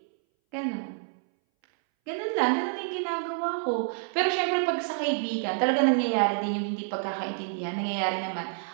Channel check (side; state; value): left; silent; 59 dB below the other